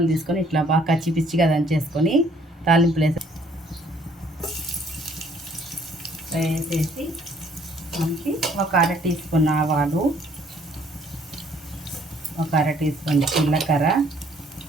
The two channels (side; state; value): both; normal; correlation 0.62